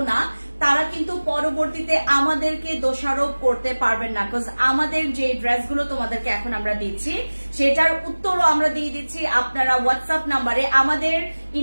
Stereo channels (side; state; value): both; inverted; correlation -1.00